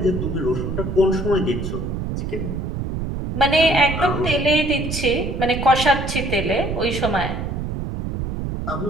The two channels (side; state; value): right; noise; rumble, 4 dB below the sound